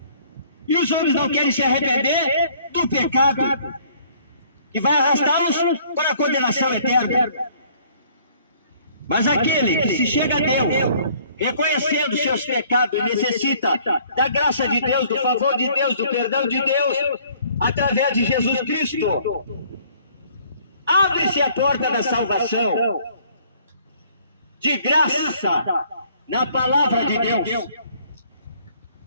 E os homens não querem se arrepender do pecado, que vai arrastá-los para a condenação eterna. Mas aquele que se chega a Deus, reconhecendo seus pecados, necessita da graça de Deus, do favor de Deus, do perdão de Deus, através de Jesus Cristo, Abre-se a porta da salvação, de graça, na palavra de Deus.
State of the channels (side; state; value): both; inverted; correlation -0.59